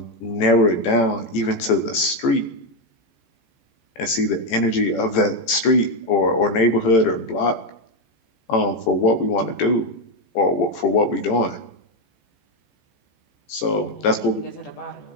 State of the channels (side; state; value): right; late; 14 ms